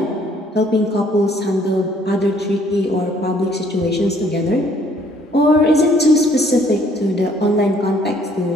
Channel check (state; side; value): normal; both; correlation 0.62